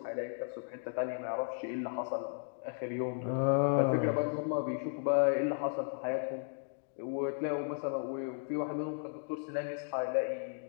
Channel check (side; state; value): right; silent; digital silence